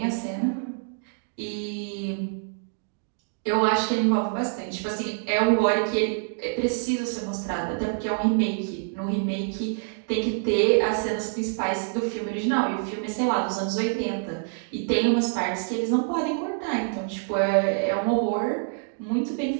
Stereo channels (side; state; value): left; silent; digital silence